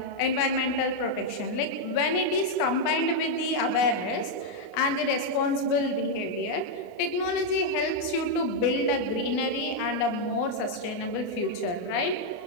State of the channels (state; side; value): late; right; 28 ms